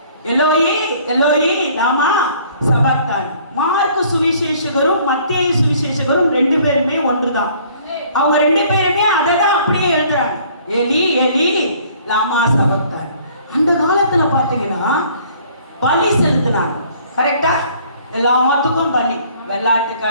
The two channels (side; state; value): both; inverted; correlation -0.57